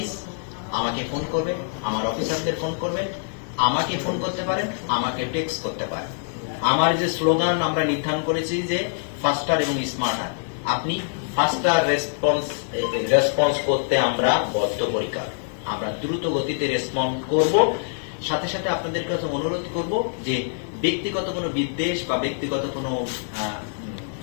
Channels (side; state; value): right; silent; digital silence